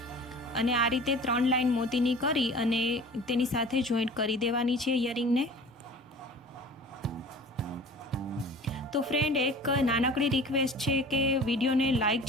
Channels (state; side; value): normal; both; correlation 0.42